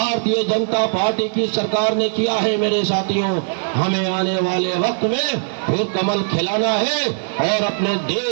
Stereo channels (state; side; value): silent; left; digital silence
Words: जनता पार्टी की सरकार ने किया है मेरे साथियों। हमें आने वाले वक्त में फिर कमल खिलाना है और अपने